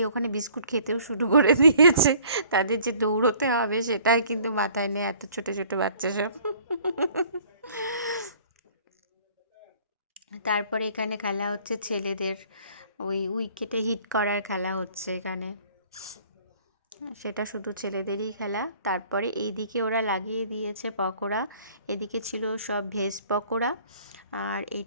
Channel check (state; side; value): inverted; both; correlation -0.55